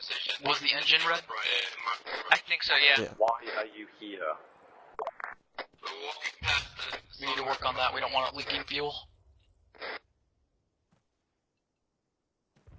Was the engine red? I think so, yeah. Why are you here? We need to work on that. We don't want it leaking fuel.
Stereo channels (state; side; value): identical; both; correlation 1.00